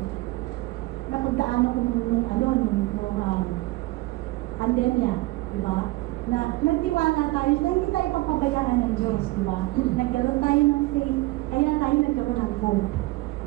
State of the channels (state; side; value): quieter; left; 19.8 dB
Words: Napagdaanan ko nung pandemya, di ba? Na nagtiwala tayo, na hindi tayo papabayaan ng Diyos, di ba? Nagkaroon tayo ng faith, kaya tayo nagkaroon ng hope.